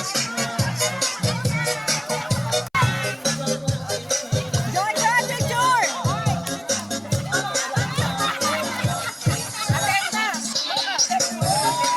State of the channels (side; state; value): both; identical; correlation 1.00